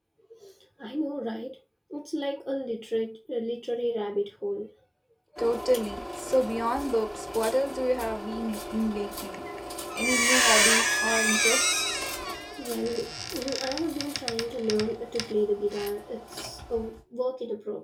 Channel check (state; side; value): identical; both; correlation 1.00